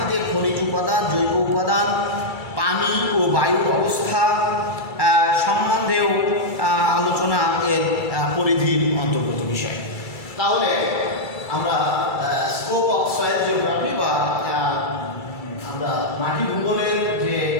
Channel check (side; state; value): right; late; 2.3 ms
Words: খনিজ উপাদান, জৈব উপাদান, পানি ও বায়ুর অবস্থা সম্বন্ধেও আলোচনা এর পরিধির অন্তর্গত বিষয়। তাহলে আমরা স্কোপ অফ সয়েল জিওগ্রাফি বা আমরা মাটি ভূগোলের যে